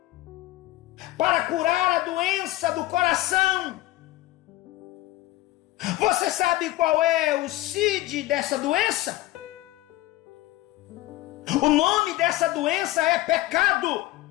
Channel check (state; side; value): quieter; right; 17.0 dB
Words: para curar a doença do coração. Você sabe qual é o CID dessa doença? O nome dessa doença é pecado.